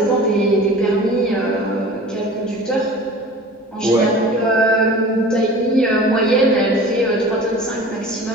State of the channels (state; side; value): normal; both; correlation 0.41